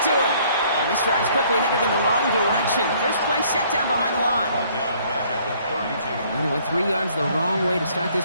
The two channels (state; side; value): inverted; both; correlation -0.61